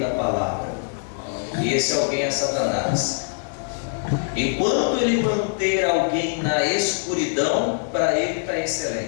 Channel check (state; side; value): silent; right; digital silence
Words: palavra. E esse alguém é Satanás. Enquanto ele manter alguém na escuridão, para ele está